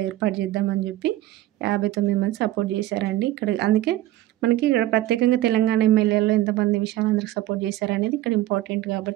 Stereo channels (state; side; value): quieter; left; 15.1 dB